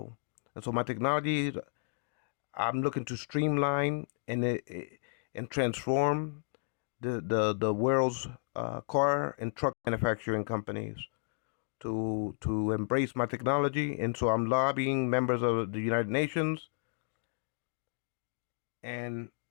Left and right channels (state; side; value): silent; right; digital silence